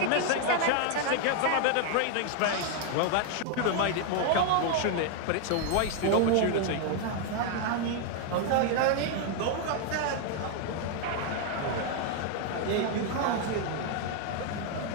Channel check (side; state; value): both; different; correlation 0.00